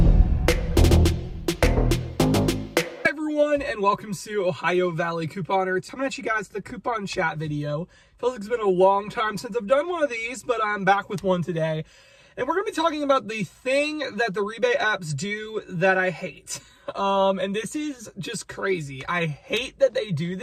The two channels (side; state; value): both; identical; correlation 1.00